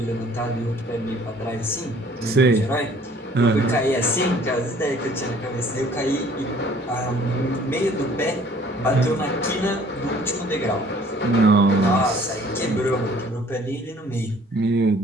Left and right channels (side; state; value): both; normal; correlation 0.55